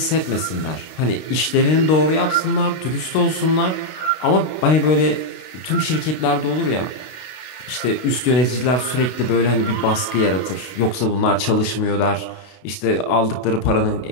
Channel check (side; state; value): right; late; 32 ms